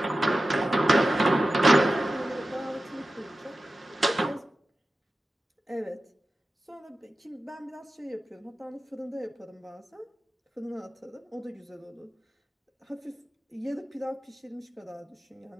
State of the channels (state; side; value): normal; both; correlation 0.94